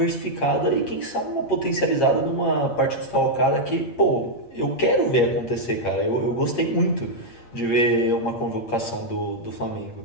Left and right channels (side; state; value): right; late; 8.6 ms